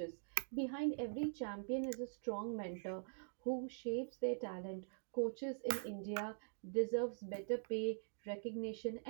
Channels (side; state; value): left; silent; digital silence